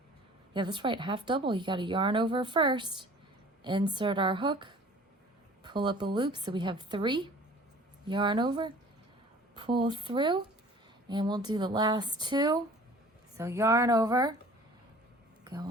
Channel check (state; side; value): normal; both; correlation 0.48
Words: yeah, that's right, half double. You got to yarn over first, insert our hook, pull up a loop, so we have 3, yarn over, pull through, and we'll do the last 2. So yarn over, go